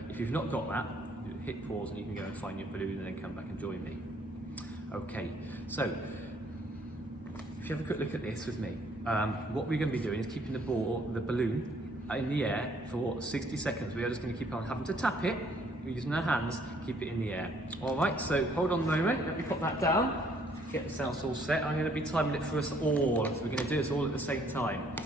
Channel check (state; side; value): normal; both; correlation 0.64